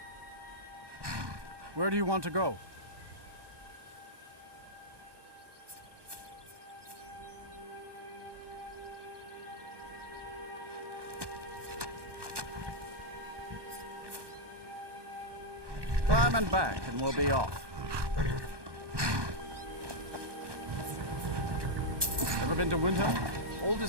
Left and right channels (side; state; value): left; late; 1.2 ms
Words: Where do you want to go? Climb and back, and we'll be off. Ever been to Winter?